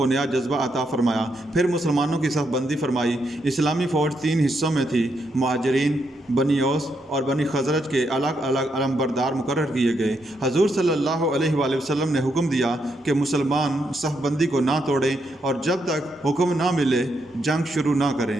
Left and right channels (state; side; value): normal; both; correlation 0.79